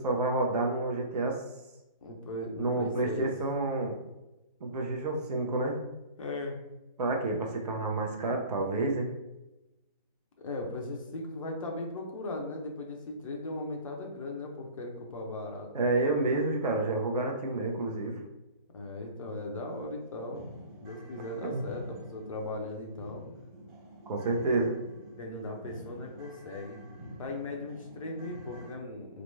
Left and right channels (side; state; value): both; inverted; correlation -0.42